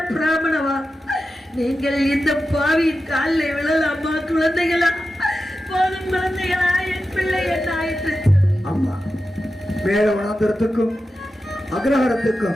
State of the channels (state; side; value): normal; both; correlation 0.92